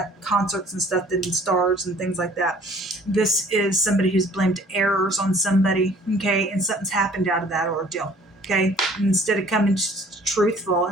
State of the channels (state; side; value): normal; both; correlation 0.54